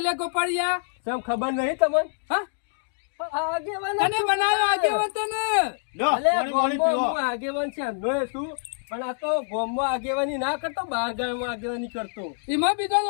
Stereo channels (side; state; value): right; silent; digital silence